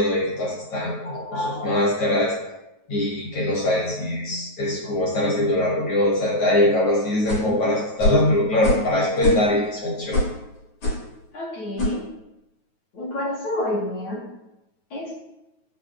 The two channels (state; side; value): late; right; 9.3 ms